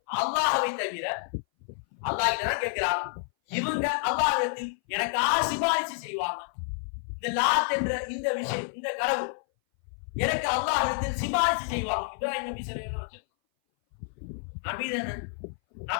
அல்லாஹ்வை தவிர அல்லாஹ் கிட்ட தான் கேட்கிறாங்க. இவங்க அல்லாஹ்விடத்தில் எனக்காக சிபாரிசு செய்வாங்க. இந்த லாத் என்ற இந்த விஷயம், இந்த கடவுள் எனக்கு அல்லாஹ்விடத்தில் சிபாரிசு செய்வாங்க. இப்ராஹிம் நபி ஸல்லல்லாஹு அலைஹி வஸல்லம் நபி தானே,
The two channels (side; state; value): right; silent; 58 dB below the other